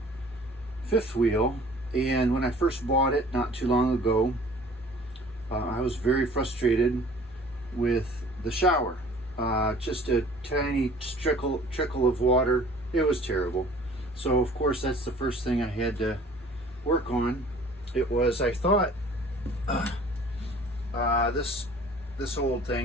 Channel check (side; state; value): both; normal; correlation 0.50